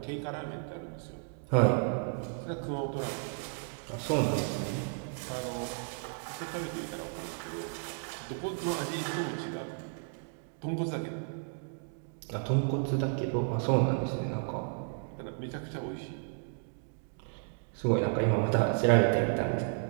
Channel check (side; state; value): left; silent; 56 dB below the other